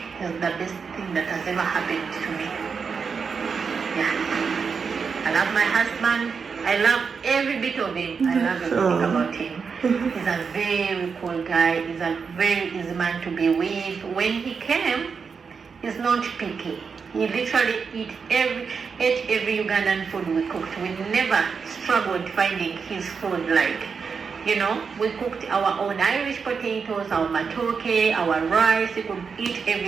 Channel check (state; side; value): quieter; left; 5.7 dB